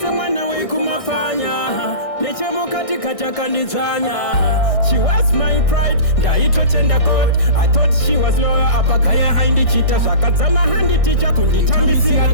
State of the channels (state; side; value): late; right; 1.6 ms